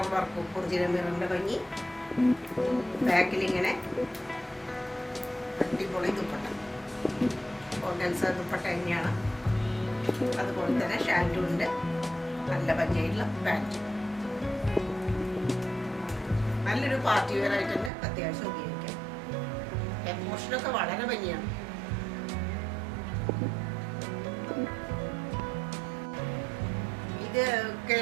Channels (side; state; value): left; drops out; at 17.9 s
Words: വർക്കും ഒറിജിനൽ മിററിൻ്റെ ഭംഗി. ബാക്കിലിങ്ങനെ അടിപൊളി ദുപ്പട്ട, ഓർഗൻസ ദുപ്പട്ട തന്നെയാണ്. അതുപോലെ തന്നെ ഷാൻറ്റും ഉണ്ട്. നല്ല ഭംഗിയായിട്ടുള്ള പാൻറ്റ്. നല്ലൊരു പാർട്ടി വെയർ ആയിട്ട് തന്നെ അത്യാവശ്യം ഉപയോഗിക്കാം. എമോഷനൊക്കെ വളരെ ഭംഗിയാണ്. ഇത്